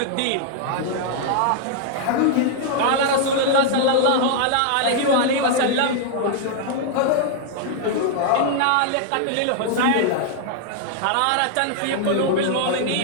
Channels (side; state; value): both; different; correlation 0.00